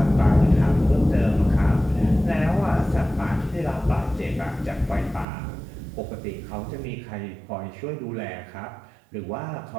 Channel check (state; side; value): drops out; left; at 5.2 s